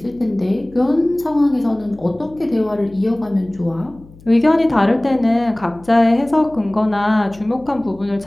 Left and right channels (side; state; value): left; noise; hum, 23 dB below the sound